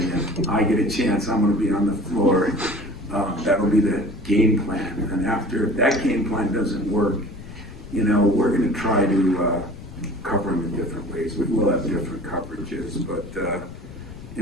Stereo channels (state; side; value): noise; left; rumble, 15 dB below the sound